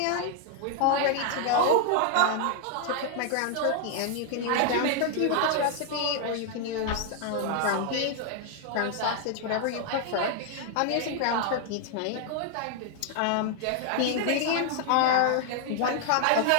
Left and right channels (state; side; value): different; both; correlation 0.00